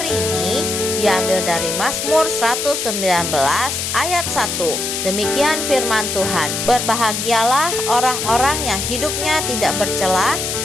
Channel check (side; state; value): left; noise; hiss, 3 dB below the sound